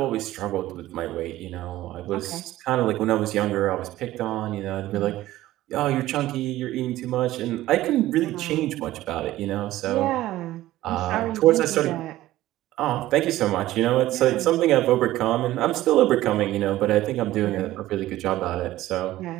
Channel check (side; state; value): left; quieter; 15.5 dB